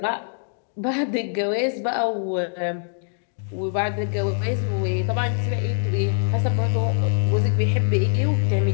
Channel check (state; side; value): silent; right; digital silence